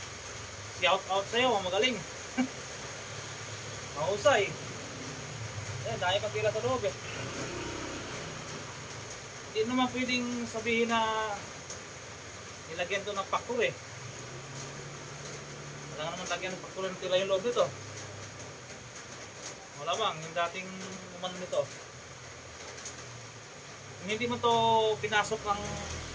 Shout out sa'yo, magaling. Mahusay. Ayan, dahil pang tela sa loob eh. Hindi naman pwedeng sabihin na nilagyan to ng factor eh. Wala naman lagyan ng factor ng tela yung loob nito. Wala bang, yung dating umano nito. Kung hindi mo to pinasok ng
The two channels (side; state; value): both; identical; correlation 1.00